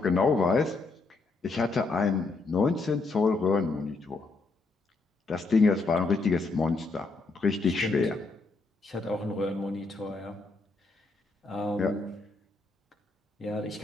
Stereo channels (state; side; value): quieter; right; 3.6 dB